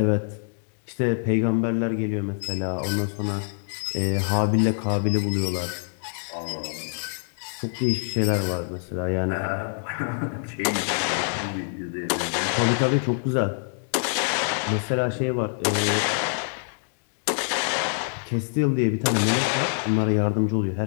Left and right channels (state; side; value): silent; right; digital silence